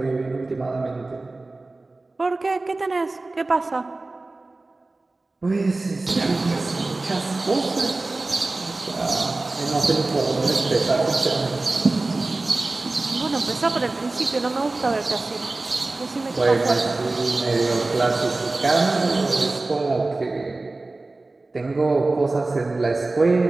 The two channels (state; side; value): quieter; left; 3.2 dB